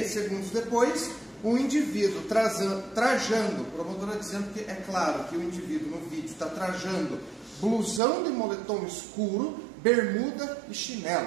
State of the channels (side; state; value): left; drops out; at 8.0 s